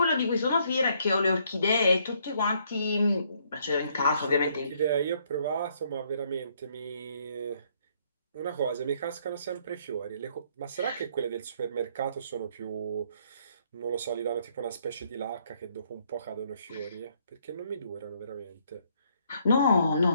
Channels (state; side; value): inverted; both; correlation -0.68